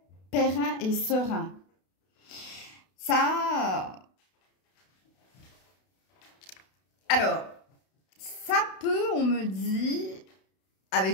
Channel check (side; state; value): right; late; 32 ms